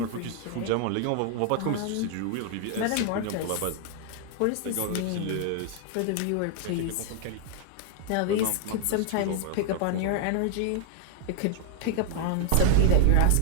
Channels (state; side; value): different; both; correlation 0.00